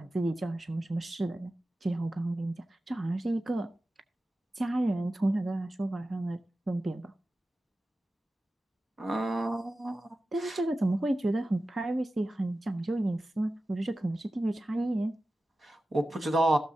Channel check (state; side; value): normal; both; correlation 0.94